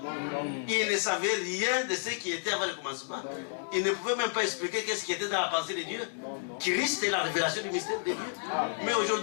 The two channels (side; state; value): right; silent; digital silence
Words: Il ne savait rien de ce qui était avant le commencement. Il ne pouvait même pas expliquer qu'est-ce qui était dans la pensée de Dieu. Christ est la révélation du mystère de Dieu. Mais